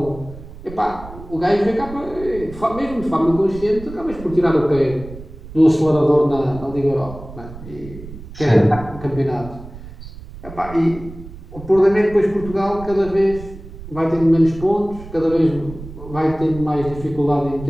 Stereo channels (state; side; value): noise; right; rumble, 14 dB below the sound